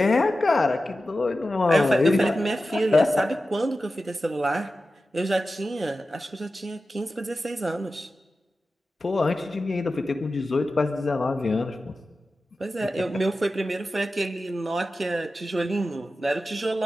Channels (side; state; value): both; normal; correlation 0.93